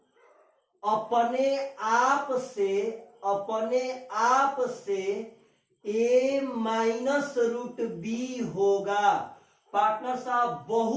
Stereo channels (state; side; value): identical; both; correlation 1.00